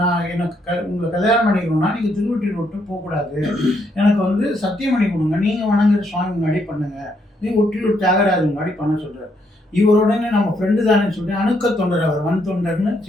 எனக்கு உங்களை கல்யாணம் பண்ணிக்கணும்னா நீங்க திருவொற்றியூர் விட்டு போகக்கூடாது, எனக்கு வந்து சத்தியம் பண்ணி கொடுங்க, நீங்க வணங்குற சுவாமி முன்னாடி பண்ணுங்க, நீங்க ஒற்றியூர் தியாகராஜன் முன்னாடி பண்ண சொல்றாரு. இவருடனே நம்ம ஃப்ரெண்டு தானே சொல்லிட்டு அணுக்க தொண்டர், அவர் வன் தொண்டர்னு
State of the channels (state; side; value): normal; both; correlation 0.74